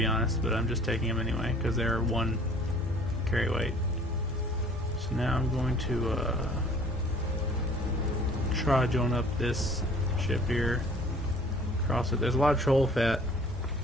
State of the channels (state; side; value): normal; both; correlation 0.52